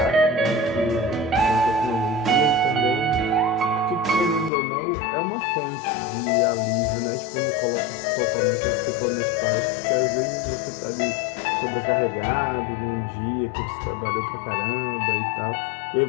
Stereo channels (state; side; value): drops out; right; at 4.5 s